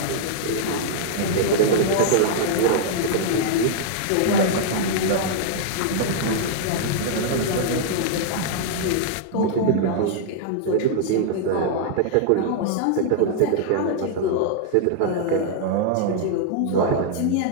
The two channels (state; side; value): different; both; correlation -0.01